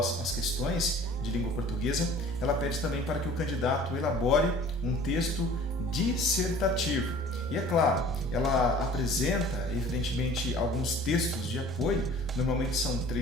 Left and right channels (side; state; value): both; normal; correlation 0.48